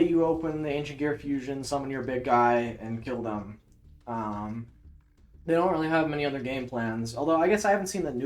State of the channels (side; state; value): both; identical; correlation 1.00